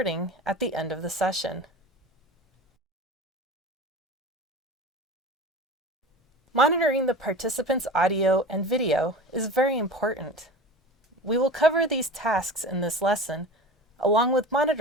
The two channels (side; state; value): both; normal; correlation 0.34